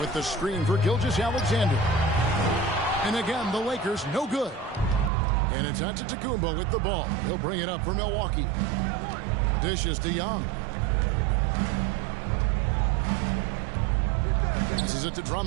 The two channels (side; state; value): left; drops out; at 5.1 s